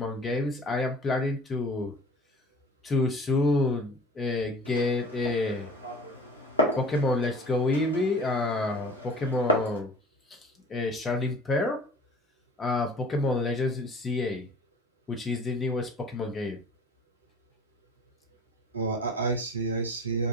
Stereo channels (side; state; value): both; normal; correlation 0.44